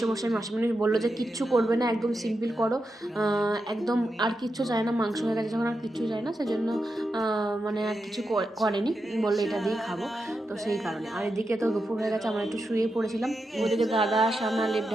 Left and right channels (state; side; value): normal; both; correlation 0.88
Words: মাসিমণি বললো যে কিচ্ছু করবে না, একদম সিম্পল করো, একদম আর কিচ্ছু চায় না, মাংস হয়ে গেছে যখন আর কিচ্ছু চায় না, সেজন্য মানে আর কিছু করেনি, বললো এটা দিয়ে খাবো। তো সেই কারণে আর এদিকে তো দুপুর হয়ে গেছে, আমরা একটু শুয়ে পড়েছিলাম। ওইদিকে দাদা সামনে লেপ